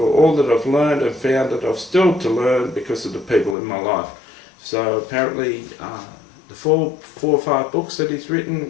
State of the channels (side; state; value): right; drops out; at 3.6 s